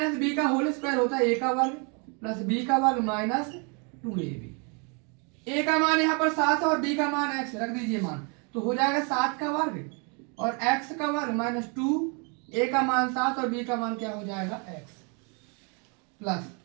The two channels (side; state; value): left; quieter; 35.0 dB